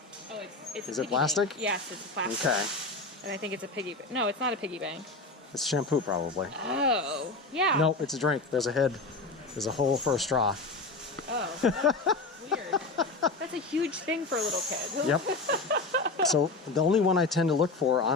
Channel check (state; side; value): quieter; right; 3.4 dB